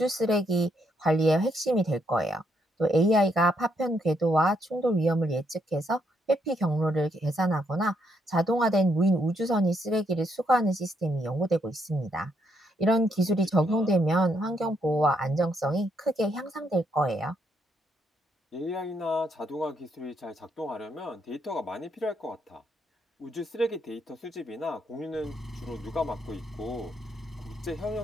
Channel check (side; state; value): both; normal; correlation 0.75